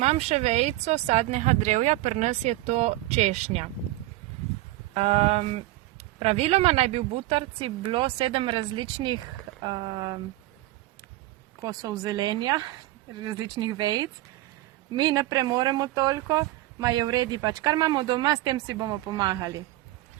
še vejico sadnega drevja, pri nas je to češnja. Praviloma naj bi v butarici bilo 7 različnih kosov zelenja, različnih vejic. Mi ne premoremo toliko, ma je v redu pač, kar imamo doma, s tem si bomo pomagali.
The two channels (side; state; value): left; quieter; 17.2 dB